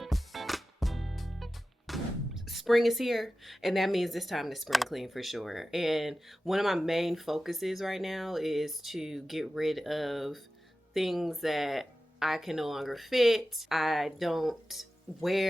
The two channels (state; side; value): normal; both; correlation 0.94